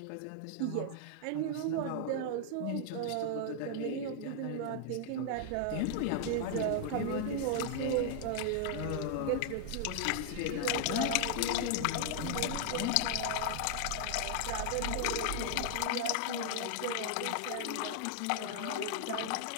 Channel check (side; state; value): both; different; correlation 0.00